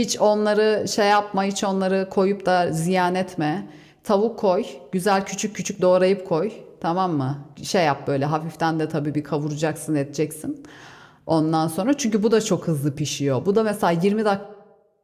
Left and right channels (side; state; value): both; identical; correlation 1.00